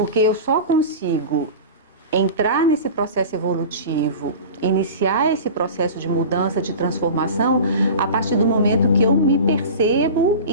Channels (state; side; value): inverted; both; correlation -0.34